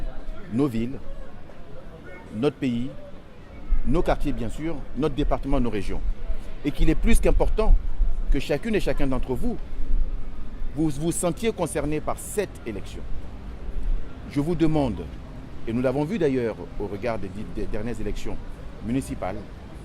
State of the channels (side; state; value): both; identical; correlation 1.00